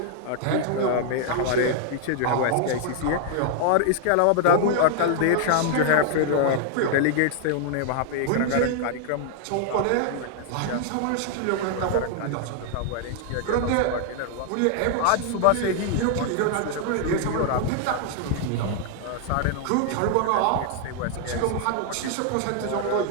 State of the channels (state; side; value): different; both; correlation 0.00